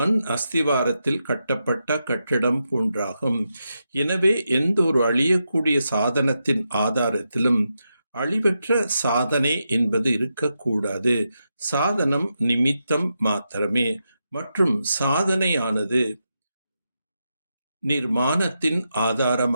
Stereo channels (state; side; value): inverted; both; correlation -0.86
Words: அஸ்திவாரத்தில் கட்டப்பட்ட கட்டிடம் போன்றாகும். எனவே எந்த ஒரு அழியக்கூடிய சாதனத்தின் ஆதாரத்திலும் அழிவற்ற சாதனை என்பது இருக்கக்கூடாது. சாதனம் நிமித்தம் மாத்திரமே. மற்றும் சாதனையானது நிர்மாணத்தின்